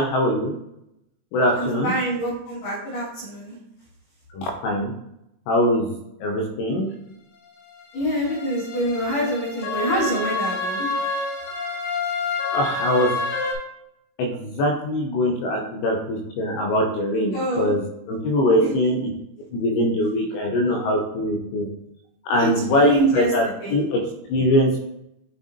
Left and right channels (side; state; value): right; late; 21 ms